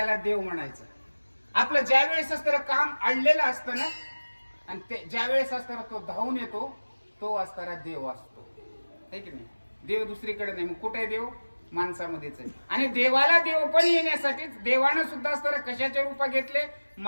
देव म्हणायचं. आपलं ज्या वेळेस असतं काम अडलेलं असतं ना आणि ते ज्या वेळेस असताना तो धावून येतो तो असणारा देव असतो, है की नाही? देव दुसरीकडे नाही. मग कुठे देव? माणसामध्येच आहे. आणि देवाला देव पण येण्यासाठीच देवानं सुद्धा असताना कशाचे रूप घेतले?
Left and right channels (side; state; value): both; inverted; correlation -1.00